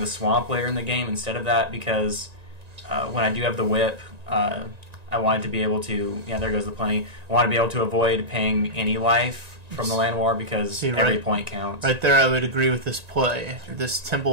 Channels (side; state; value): left; late; 1.9 ms